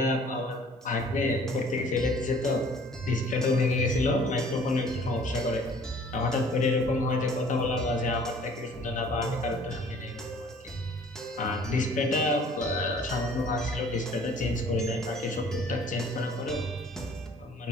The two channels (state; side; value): normal; both; correlation 0.53